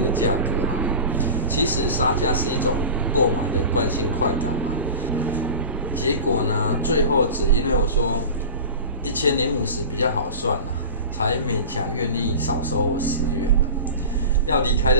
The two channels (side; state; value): both; inverted; correlation -0.32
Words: 的价格其实杀价是一种购买的惯性快感嘛。结果呢，最后只因为我说1050比较好算才勉强愿意少收我10元要离开